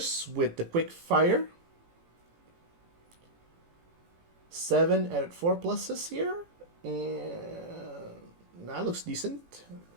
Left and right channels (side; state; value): left; late; 18 ms